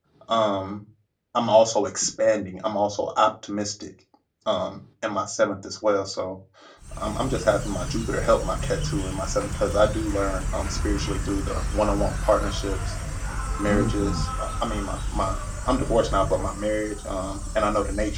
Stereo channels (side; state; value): both; identical; correlation 1.00